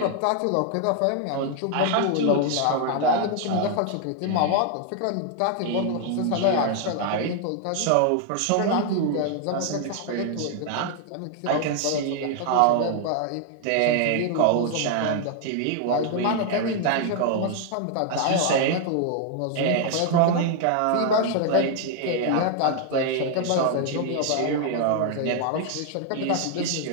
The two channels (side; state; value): both; different; correlation 0.00